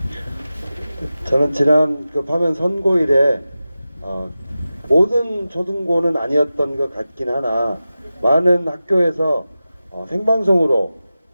저는 지난 그 파면 선고일에 모든 초등고는 아니었던 것 같긴 하나 많은 학교에서 생방송으로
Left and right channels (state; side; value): inverted; both; correlation -0.94